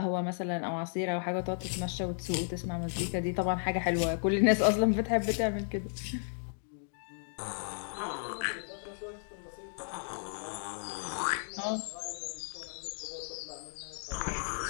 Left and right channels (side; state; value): right; silent; digital silence